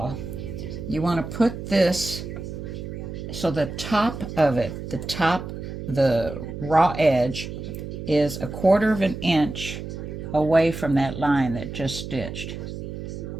You want to put this so the top of it, the raw edge is 1/4 of an inch away from that line that just stitched.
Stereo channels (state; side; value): noise; right; hum, 8 dB below the sound